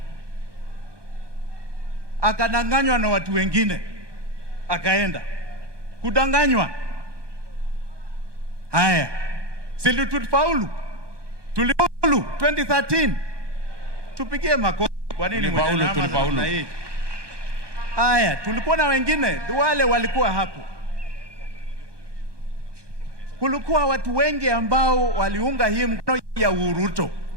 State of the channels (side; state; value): left; late; 1.2 ms